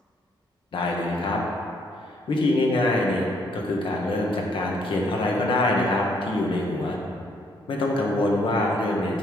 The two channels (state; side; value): normal; both; correlation 0.69